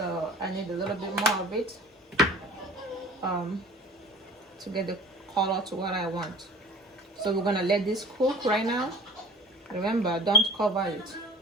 I need a little bit more of it to get the color to what I want. So we're gonna let this cook right now. Remember, don't cover it.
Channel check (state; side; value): normal; both; correlation 0.43